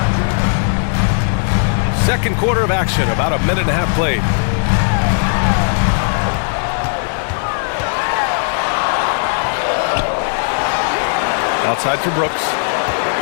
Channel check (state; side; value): silent; right; 69 dB below the other